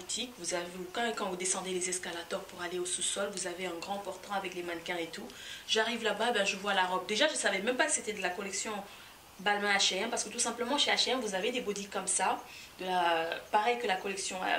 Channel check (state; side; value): identical; both; correlation 1.00